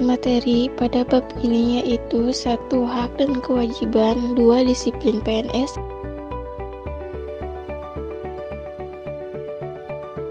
materi pada bab ini yaitu 1. Hak dan kewajiban, 2. Disiplin PNS,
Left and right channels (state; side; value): identical; both; correlation 1.00